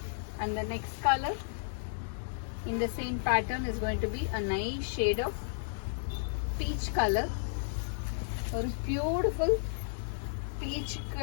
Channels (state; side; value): silent; right; digital silence